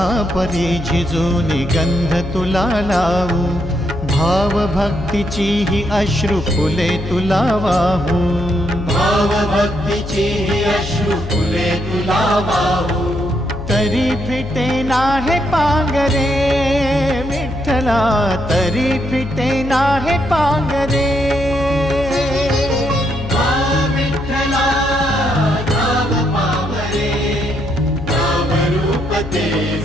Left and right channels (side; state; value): left; noise; hum, 9 dB below the sound